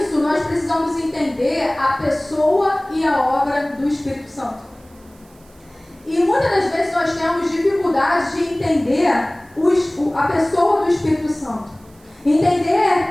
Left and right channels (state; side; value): noise; right; hiss, 30 dB below the sound